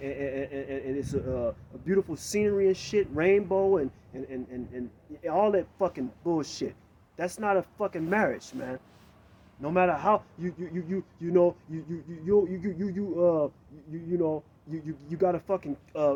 it's a beautiful scenery and shit, rainbow and all that fucking bullshit. That's not a fucking marriage, man. No matter how you got a fucking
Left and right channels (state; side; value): identical; both; correlation 1.00